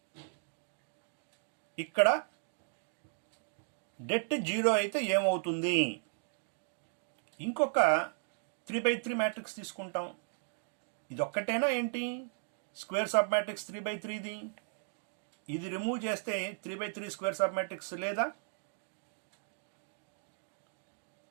ఇక్కడ det 0 అయితే ఏమవుతుంది? ఇంకొక 3 by 3 matrix తీసుకుంటాం. ఇది ఒక్కటేనా ఏంటి? Square sub matrix 3 by 3ది. ఇది రిమూవ్ చేస్తే 3 by 3 స్క్వేర్ సబ్ మ్యాట్రిక్స్ లేదా?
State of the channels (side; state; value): left; silent; digital silence